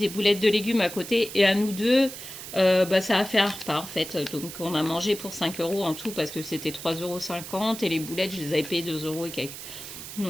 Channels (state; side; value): noise; right; hiss, 11 dB below the sound